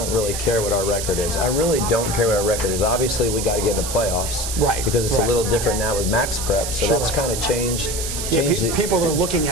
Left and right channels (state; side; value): noise; right; hiss, 4 dB below the sound